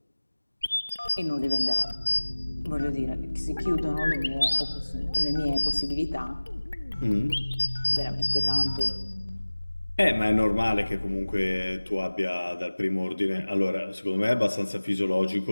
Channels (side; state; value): both; inverted; correlation -1.00